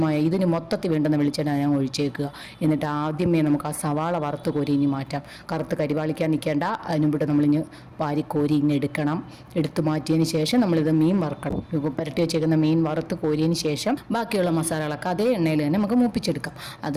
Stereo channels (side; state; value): both; identical; correlation 1.00